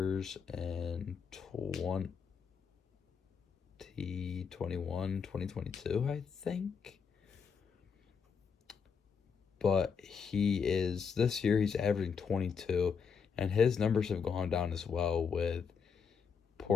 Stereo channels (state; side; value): quieter; right; 6.2 dB